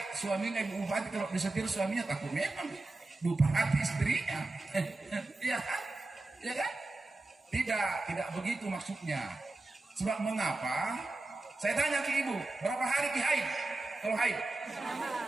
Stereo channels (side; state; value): left; quieter; 3.0 dB